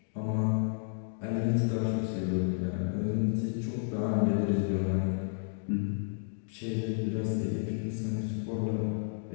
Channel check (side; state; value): right; silent; digital silence